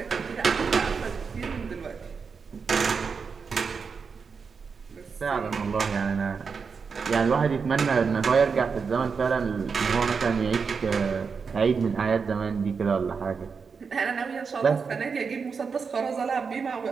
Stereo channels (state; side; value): quieter; left; 5.5 dB